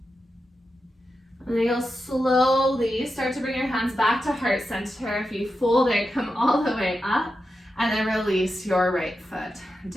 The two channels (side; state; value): both; normal; correlation 0.89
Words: And then you'll slowly start to bring your hands back to heart center. If you fold it, come all the way up, and then release your right foot